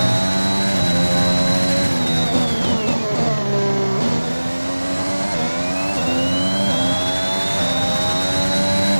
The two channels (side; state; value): both; inverted; correlation -1.00